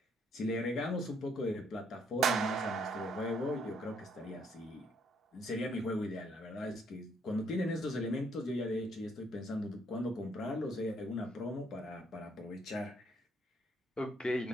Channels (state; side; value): normal; both; correlation 0.69